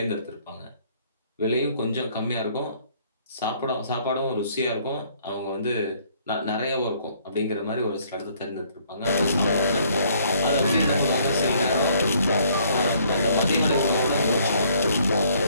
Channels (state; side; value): inverted; both; correlation -0.63